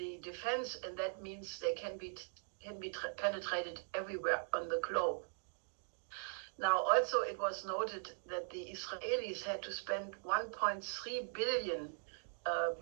defense, and that means they can be penetrated everywhere on the globe. Now, also, it was noted that the Israelis had to spend 1.3 billion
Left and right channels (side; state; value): left; silent; digital silence